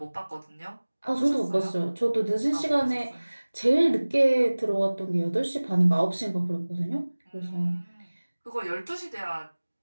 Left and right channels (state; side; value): inverted; both; correlation -1.00